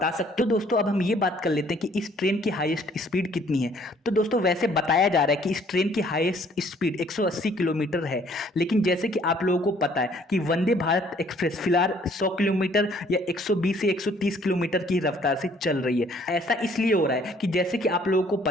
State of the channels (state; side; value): normal; both; correlation 0.60